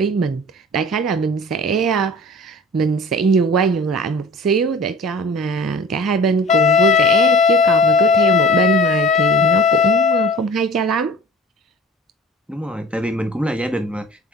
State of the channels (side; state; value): both; normal; correlation 0.42